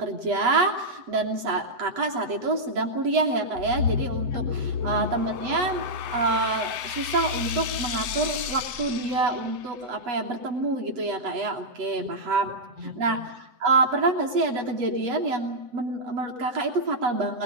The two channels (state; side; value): late; left; 7.9 ms